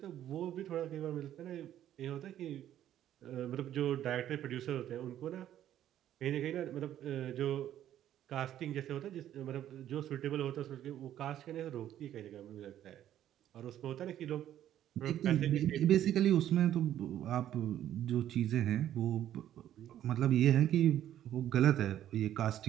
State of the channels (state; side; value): quieter; left; 11.6 dB